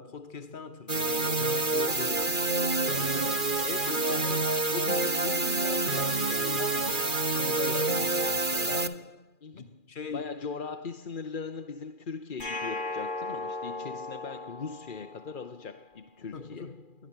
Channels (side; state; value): right; late; 2.4 ms